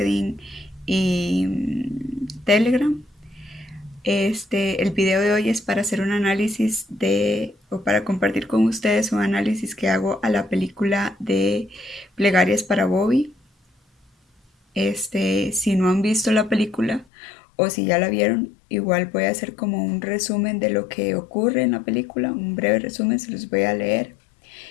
y Telegram. El video de hoy es para hacer un análisis o para compartir con ustedes un análisis que hago a la película de Plegarias para Bobby. Si no han visto la película o si ya la vieron, igual voy a hacer como un resumen de lo que ocurre en la película, un breve resumen, se los voy a leer.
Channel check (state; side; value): drops out; right; at 17.1 s